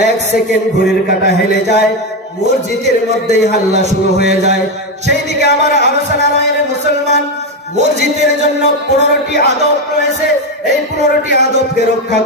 1 সেকেন্ড ঘড়ির কাঁটা হেলে যায়, মসজিদের মধ্যেই হাল্লা শুরু হয়ে যায়। সেই দিকে আমার আলোচনা নয়। রে মুসলমান, মসজিদের জন্য 15টি আদব রয়েছে, এই 15টি আদবকে রক্ষা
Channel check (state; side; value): normal; both; correlation 0.11